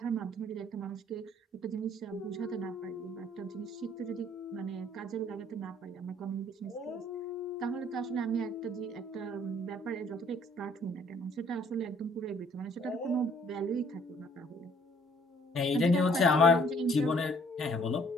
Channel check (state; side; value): normal; both; correlation 0.60